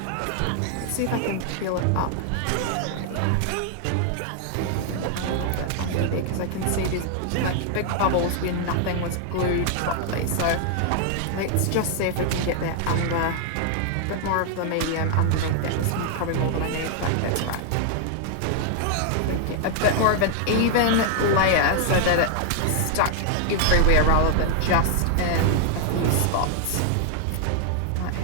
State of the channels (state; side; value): different; both; correlation 0.00